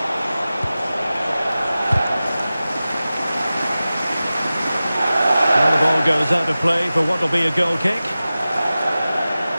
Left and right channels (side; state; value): both; inverted; correlation -0.96